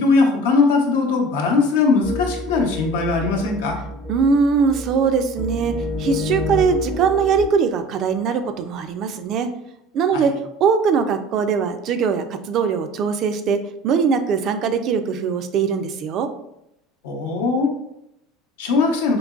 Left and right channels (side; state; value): both; normal; correlation 0.43